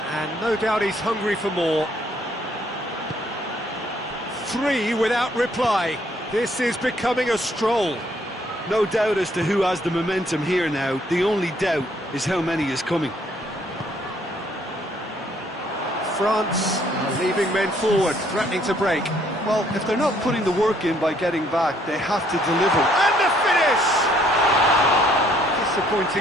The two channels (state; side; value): normal; both; correlation 0.65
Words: and no doubt he's hungry for more. 3 without reply. This is becoming a stroll. No doubt as to who has the momentum here now. The only doubt is how many is coming. France are leaving men forward, threatening to break. Well, if they're not putting the work in by getting back, they have to deliver. And the finish!